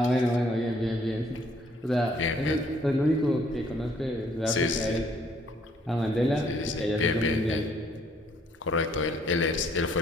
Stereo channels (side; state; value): both; normal; correlation 0.65